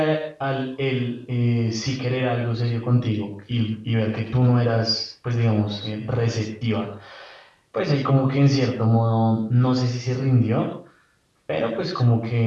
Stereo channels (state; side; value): identical; both; correlation 1.00